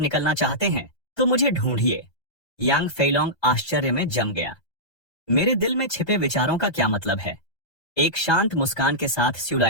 चाहते हैं तो मुझे ढूंढिए। यांग फेलोंग आश्चर्य में जम गया। मेरे दिल में छिपे विचारों का क्या मतलब है? एक शांत मुस्कान के साथ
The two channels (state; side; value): late; right; 1.3 ms